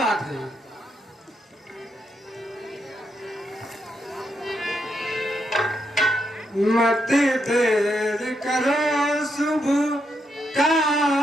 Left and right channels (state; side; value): normal; both; correlation 0.81